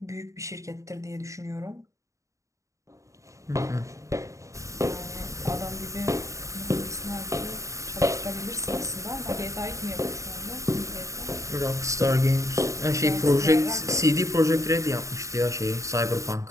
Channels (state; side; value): late; left; 0.15 ms